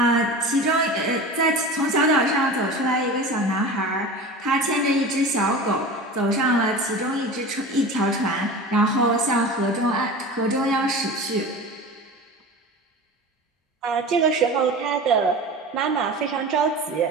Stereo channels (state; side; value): normal; both; correlation 0.33